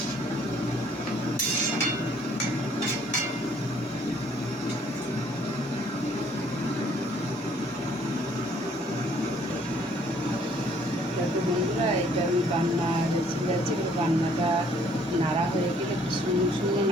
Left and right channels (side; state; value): both; normal; correlation 0.62